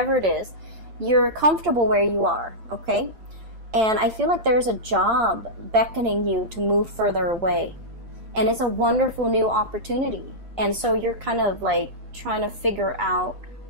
it is. you're comfortable where you are, okay? And I feel like there's a job beckoning you to move further away. And it's a wonderful new opportunity. And so you're kind of like trying to figure out,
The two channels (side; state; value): left; late; 8.6 ms